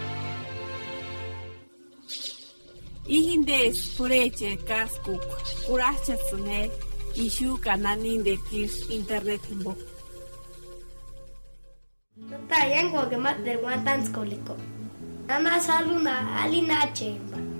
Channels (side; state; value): both; inverted; correlation -1.00